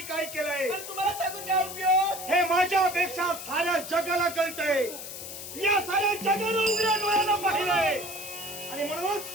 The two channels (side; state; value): left; noise; hiss, 10 dB below the sound